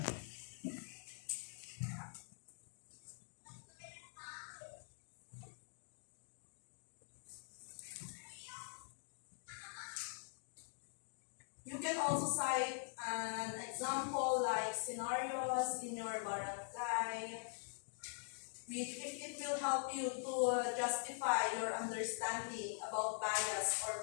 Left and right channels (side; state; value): right; silent; digital silence